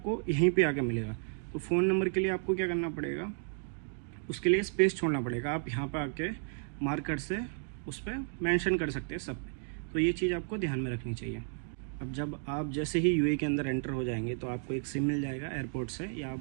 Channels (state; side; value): silent; left; 56 dB below the other